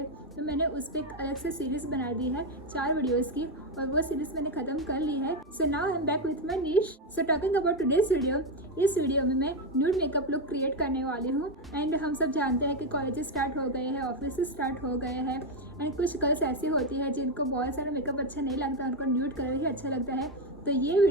तो मैंने उस पर एक अलग से सीरीज़ बना दी है 4 वीडियोस की, और वो सीरीज़ मैंने ख़त्म कर ली है. So now I am back with my निश. So talking about today's video, इस वीडियो में मैं न्यूड मेकअप लुक क्रिएट करने वाली हूँ. एंड हम सब जानते हैं कि कॉलेज स्टार्ट हो गए हैं, ऑफिस स्टार्ट हो गए हैं, एंड कुछ गर्ल्स ऐसी होती है जिनको बहुत सारा मेकअप अच्छा नहीं लगता, उनको न्यूड कलर ही अच्छा लगता है. तो ये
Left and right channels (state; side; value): normal; both; correlation 0.08